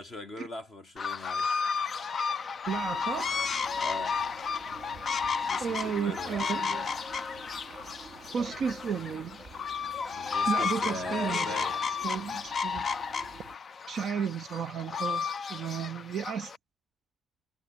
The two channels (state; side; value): normal; both; correlation 0.75